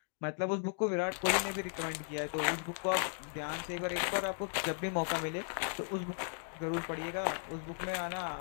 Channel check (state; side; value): silent; right; 54 dB below the other